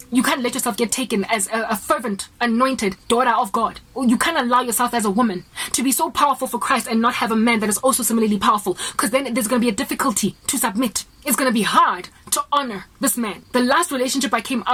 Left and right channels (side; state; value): both; identical; correlation 1.00